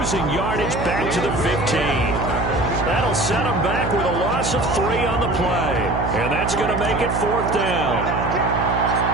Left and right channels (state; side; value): noise; right; hum, 4 dB below the sound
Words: yardage back to the 15. That'll set them back with a loss of 3 on the play. And that's going to make it 4th down.